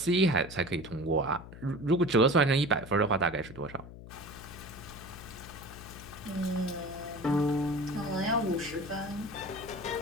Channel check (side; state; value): left; noise; hum, 15 dB below the sound